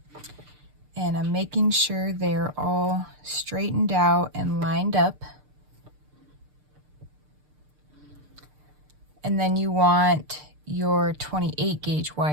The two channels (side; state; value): left; late; 6.7 ms